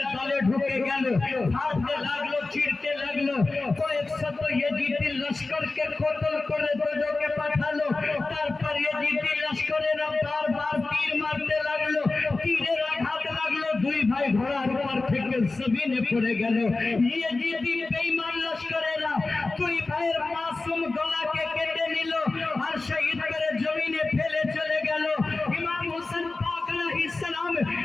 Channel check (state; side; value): quieter; right; 3.4 dB